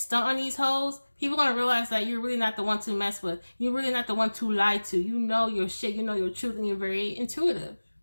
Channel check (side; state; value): both; inverted; correlation -1.00